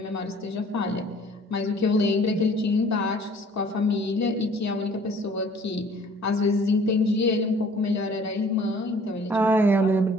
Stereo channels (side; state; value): both; normal; correlation 0.53